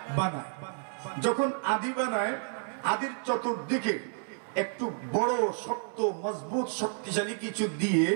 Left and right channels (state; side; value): silent; left; 57 dB below the other